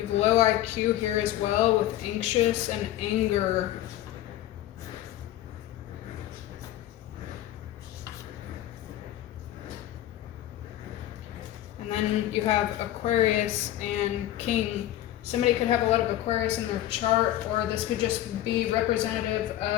have low IQ here as well with anxious and anger. And then you have Aquarius and King. Somebody could have a lot of Aquarius in their chart, or this could just be representative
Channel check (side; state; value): right; quieter; 13.6 dB